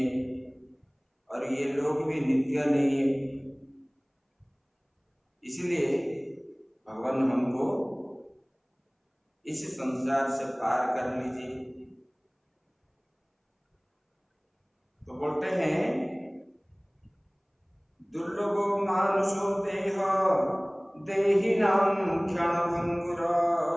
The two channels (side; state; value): both; identical; correlation 1.00